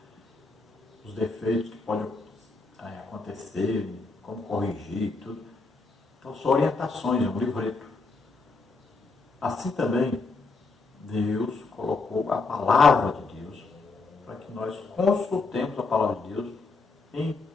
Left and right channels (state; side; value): quieter; right; 4.0 dB